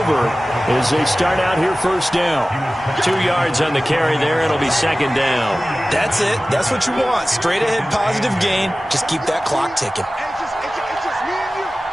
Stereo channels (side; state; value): both; normal; correlation 0.97